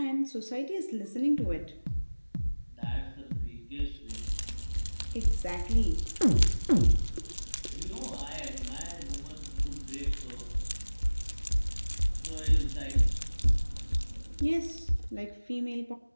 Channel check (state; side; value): inverted; both; correlation -1.00